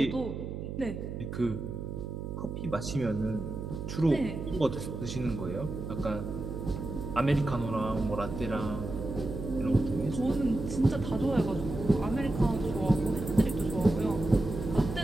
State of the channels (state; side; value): noise; right; hum, 6 dB below the sound